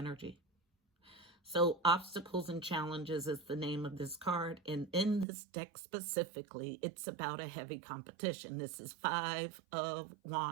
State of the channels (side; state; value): left; drops out; at 5.2 s